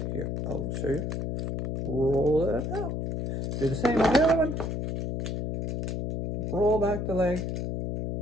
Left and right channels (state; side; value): noise; left; hum, 3 dB below the sound